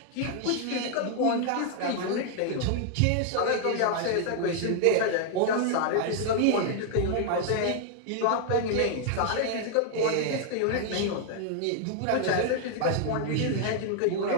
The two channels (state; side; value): different; both; correlation 0.00